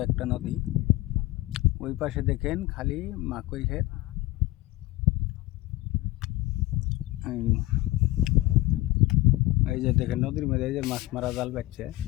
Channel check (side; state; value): right; quieter; 18.7 dB